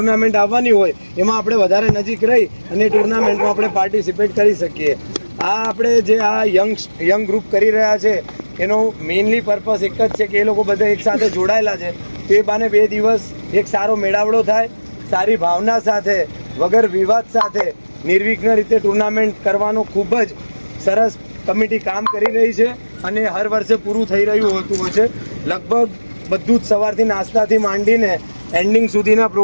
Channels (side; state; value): both; inverted; correlation -1.00